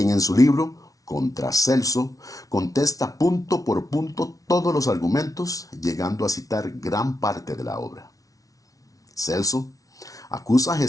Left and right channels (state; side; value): late; right; 0.17 ms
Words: en su libro Contra Celso contesta punto por punto todos los argumentos, llegando a citar gran parte de la obra. Celso acusa a